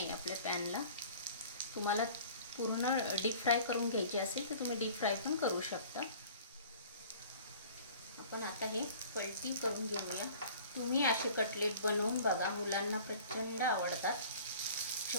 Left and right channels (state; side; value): inverted; both; correlation -0.47